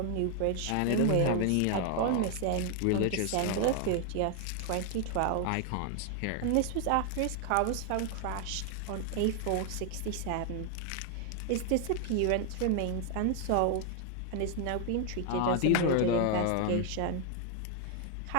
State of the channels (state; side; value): different; both; correlation 0.00